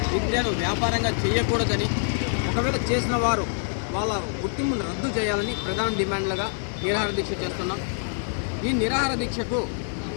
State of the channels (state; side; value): silent; right; 57 dB below the other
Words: విద్యను వ్యాపారంగా చేయకూడదని, ఒకవేళ చేసిన వారు వాళ్ళ గుర్తింపును రద్దు చేయాలని ప్రధాన డిమాండ్లుగా నిరాహార దీక్ష చేస్తున్నాం. ఈ నిరాహార దీక్షకు